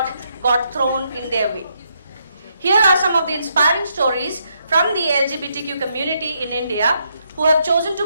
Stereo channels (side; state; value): both; inverted; correlation -0.77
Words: got thrown in their way. Here are some of the inspiring stories from the LGBTQ community in India who have chosen